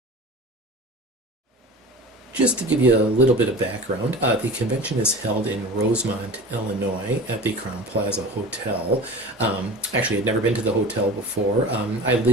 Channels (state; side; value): normal; both; correlation 0.35